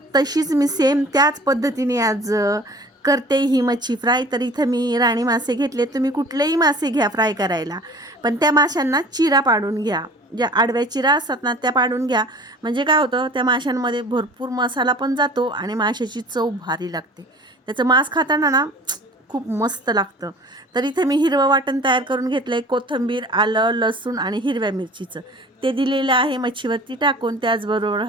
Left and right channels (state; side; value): normal; both; correlation 0.45